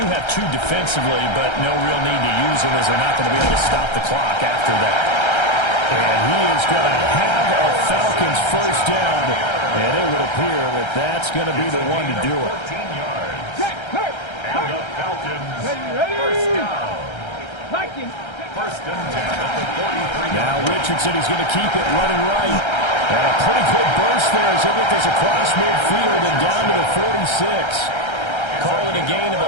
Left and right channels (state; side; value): late; right; 1.3 ms